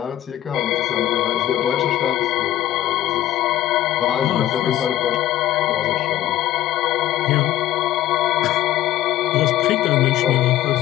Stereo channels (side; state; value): right; quieter; 13.3 dB